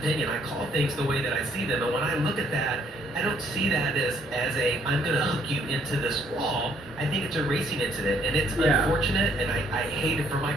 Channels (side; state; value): both; normal; correlation 0.66